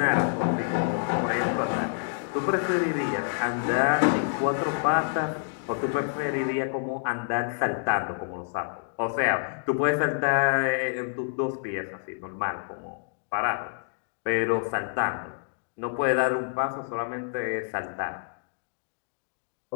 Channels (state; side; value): silent; right; digital silence